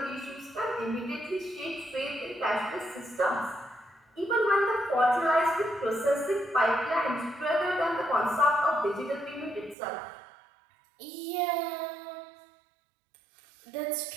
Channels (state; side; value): drops out; left; at 9.8 s